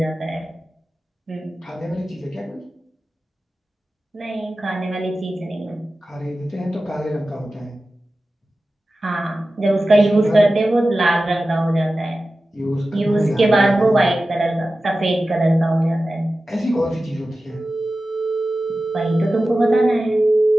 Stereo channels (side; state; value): both; normal; correlation 0.95